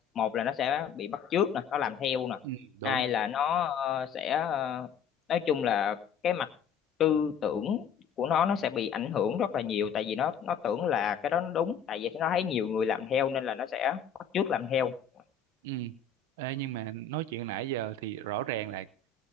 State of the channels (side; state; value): right; quieter; 6.6 dB